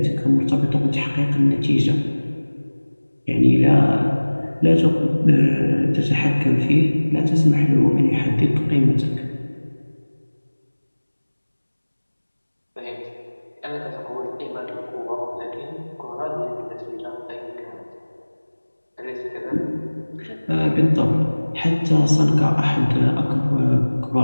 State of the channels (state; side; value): inverted; both; correlation -1.00